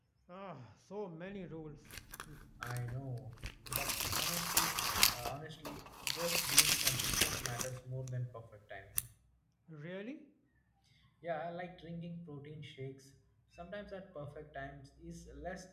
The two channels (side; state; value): both; identical; correlation 1.00